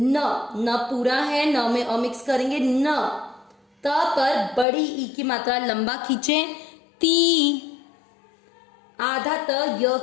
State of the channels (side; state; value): right; drops out; at 4.7 s